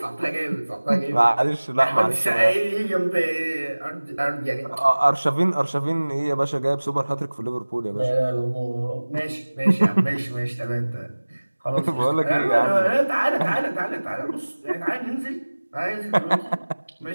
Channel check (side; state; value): both; inverted; correlation -1.00